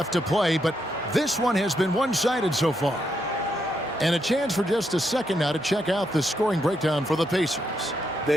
to play, but this one has been one-sided so far. And a chance for just a second now to check out the scoring breakdown for the Pacers.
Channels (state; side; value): normal; both; correlation 0.79